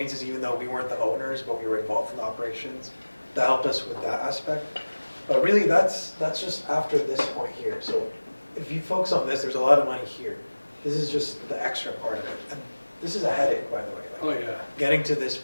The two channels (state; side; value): inverted; both; correlation -1.00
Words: even though we weren't the owners, but we were involved in the operations, that helped us with that aspect. But really, that's just after this point here. So if you focus on this, there's a lot of money here. This is just the extra part of it. And this is a headache, by the way. Like, Oh, yeah. getting to this